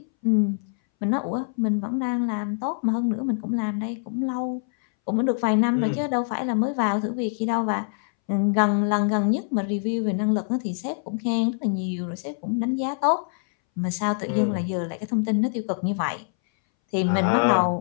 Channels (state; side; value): silent; right; 61 dB below the other